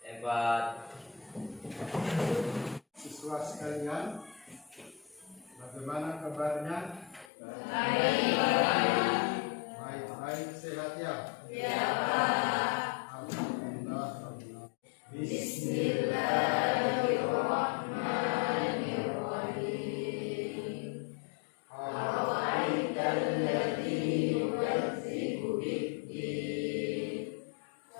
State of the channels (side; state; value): right; drops out; at 7.3 s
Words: 4. Siswa sekalian, bagaimana kabarnya? Baik, sehat ya? Ya Pak. Alhamdulillah. Bismillahirrahmanirrahim. Awaitalladzi yukadzibu bid-din,